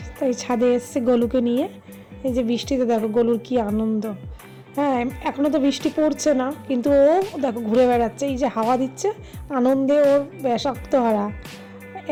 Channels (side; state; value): both; identical; correlation 1.00